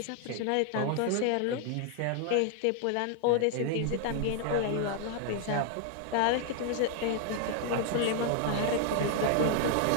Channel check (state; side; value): different; both; correlation 0.00